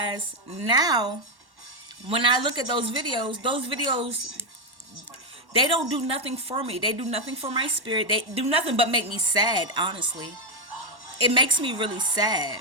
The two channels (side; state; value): left; late; 1.1 ms